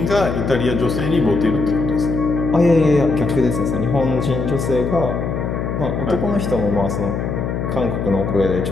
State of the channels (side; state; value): left; noise; hum, 2 dB below the sound